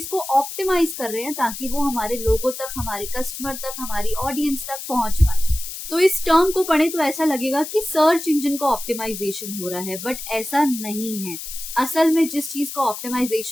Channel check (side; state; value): left; noise; hiss, 9 dB below the sound